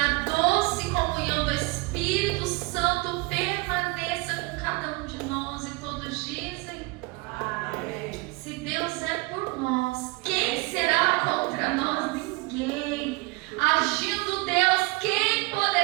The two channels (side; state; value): left; quieter; 25.4 dB